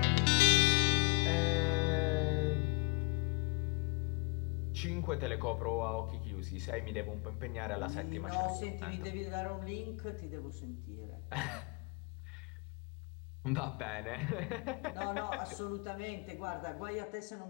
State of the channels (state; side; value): quieter; right; 33.0 dB